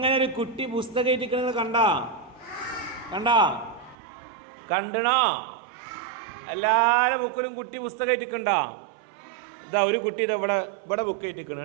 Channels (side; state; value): left; drops out; at 4.0 s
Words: ഒരു കുട്ടി പുസ്തകം ഇരിക്കുന്നത് കണ്ടണോ? എല്ലാവരുടെ ബുക്കിലും കുട്ടി പുസ്തകം ഇട്ടിക്കണ്ടോ? ഇതാ ഒരു കുട്ടി ഇതാ ഇവിടെ ബുക്ക് ഇട്ടിക്കണം,